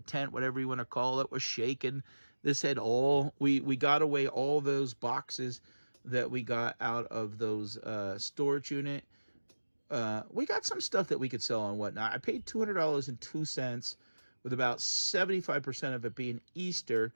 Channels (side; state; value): both; inverted; correlation -1.00